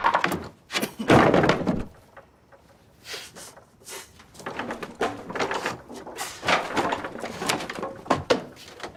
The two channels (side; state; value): both; identical; correlation 1.00